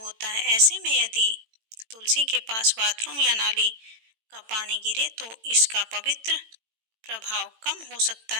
है। ऐसे में यदि तुलसी के पास बाथरूम या नाली का पानी गिरे तो इसका पवित्र प्रभाव कम हो सकता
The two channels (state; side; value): late; left; 18 ms